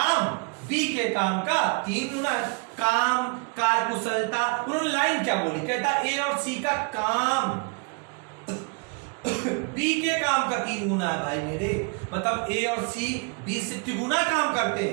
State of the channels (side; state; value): left; quieter; 34.0 dB